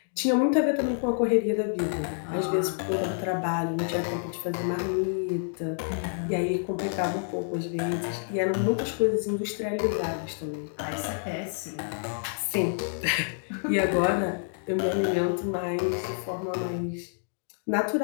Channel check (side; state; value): right; silent; digital silence